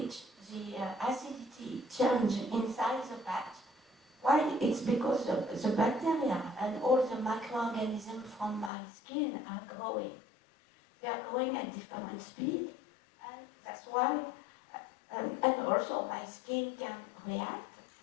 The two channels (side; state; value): right; drops out; at 8.7 s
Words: the acidity change inside the patch. Why? It's because the bacteria and all the microorganisms from my skin are growing. They are growing at different speed, and that's why, and also my skin can react,